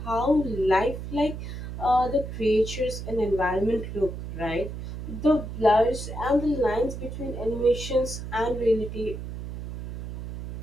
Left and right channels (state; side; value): noise; right; hum, 8 dB below the sound